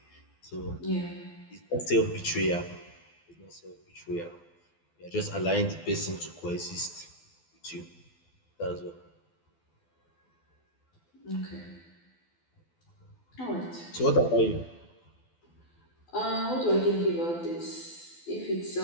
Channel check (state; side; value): late; right; 12 ms